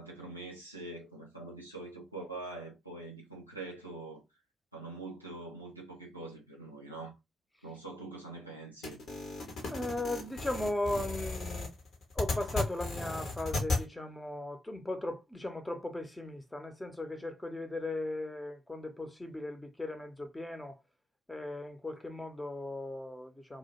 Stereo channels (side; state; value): both; normal; correlation 0.82